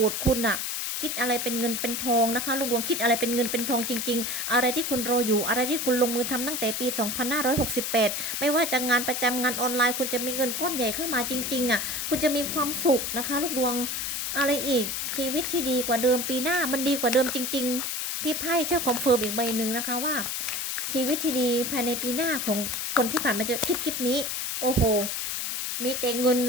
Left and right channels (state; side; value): noise; left; hiss, 2 dB below the sound